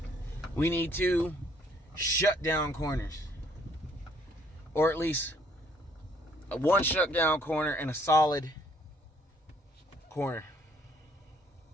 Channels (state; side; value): normal; both; correlation 0.64